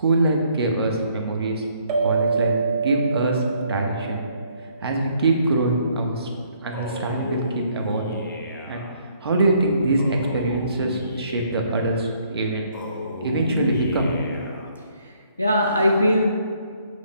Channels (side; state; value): both; inverted; correlation -0.66